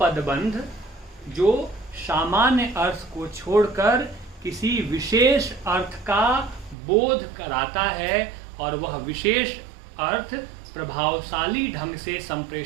जो सामान्य अर्थ को छोड़कर किसी विशेष अर्थ का बोध कराता है और वह विशेष अर्थ प्रभावशाली ढंग से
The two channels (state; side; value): drops out; left; at 6.8 s